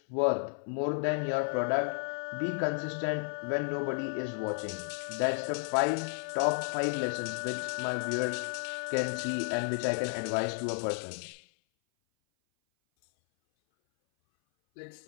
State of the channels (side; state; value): right; silent; 56 dB below the other